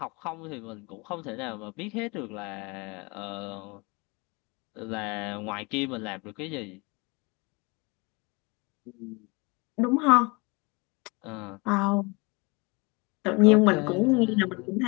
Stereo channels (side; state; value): right; quieter; 27.9 dB